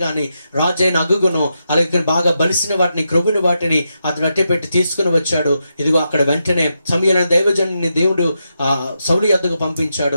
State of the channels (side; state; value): both; inverted; correlation -0.85